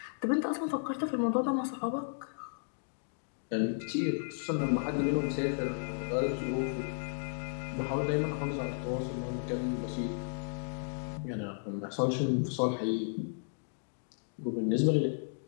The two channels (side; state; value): right; silent; digital silence